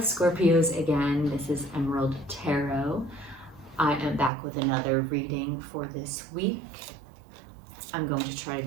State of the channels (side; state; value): left; drops out; at 4.3 s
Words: Scorpios again, this is Emerald Tarot. I am back with another reading for this week. I'm going to try to